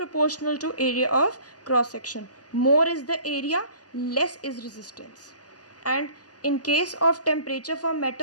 to area of cross section. More is the area, less is resistance. And in case of temperature for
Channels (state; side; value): late; right; 0.68 ms